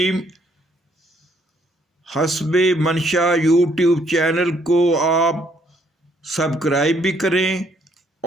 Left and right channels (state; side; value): normal; both; correlation 0.68